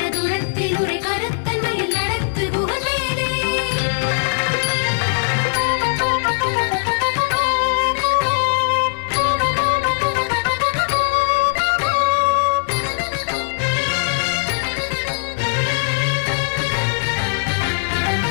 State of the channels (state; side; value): silent; right; digital silence